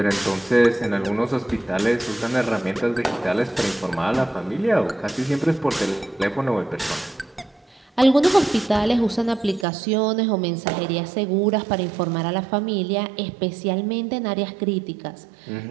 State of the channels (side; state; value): left; drops out; at 9.7 s